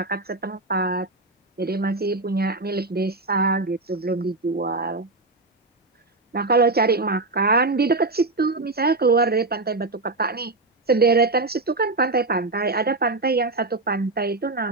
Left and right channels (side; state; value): left; quieter; 3.2 dB